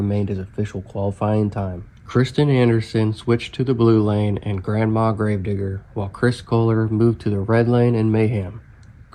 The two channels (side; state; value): both; identical; correlation 1.00